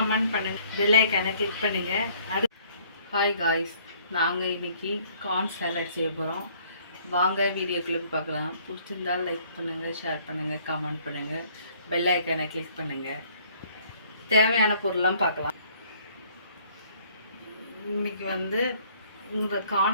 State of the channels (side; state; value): both; inverted; correlation -0.60